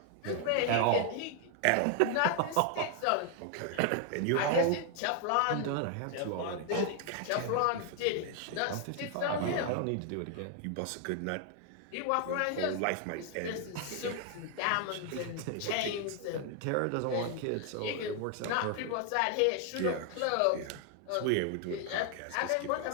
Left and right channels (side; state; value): both; different; correlation 0.00